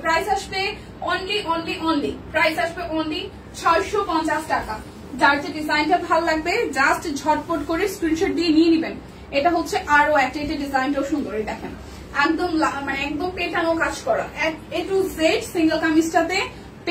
প্রাইস আসবে অনলি প্রাইস আসবে অনলি 650 টাকা। যার যে ডিজাইনটা ভালো লাগবে জাস্ট ঝটপট করে স্ক্রিনশট দিয়ে নিয়ে নেবেন। এটা হচ্ছে আরো একটা, এটা ডিজাইনটাও সুন্দর। দেখেন একদম মানে একদম পেটানো কাজ করা, A to Z সিঙ্গেল কামিজটাতে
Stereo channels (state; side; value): identical; both; correlation 1.00